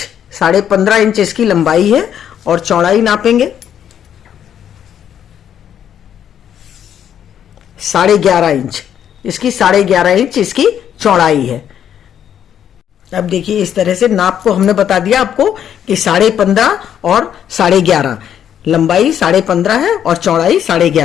इंच इसकी लंबाई है और चौड़ाई नापेंगे 11.5 इंच। इसकी 11.5 इंच इसकी चौड़ाई है। अब देखिए इस तरह से नाप को हमने बता दिया आपको कि 15.5 और 11.5, लंबाई 15.5 है और चौड़ाई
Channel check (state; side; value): quieter; right; 9.5 dB